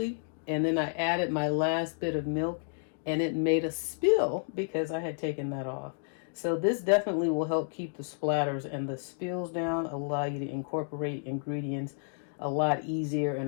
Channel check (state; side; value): silent; right; digital silence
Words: and then I added my last bit of milk and it made a spill because I had taken that off. So this definitely will help keep the splatters and the spills down, allow you to incorporate ingredients a lot easier